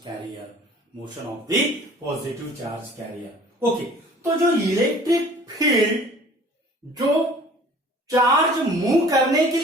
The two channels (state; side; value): normal; both; correlation 0.49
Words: carrier, motion of the positive charge carrier। Okay, तो जो इलेक्ट्रिक फील्ड जो चार्ज मूव करने के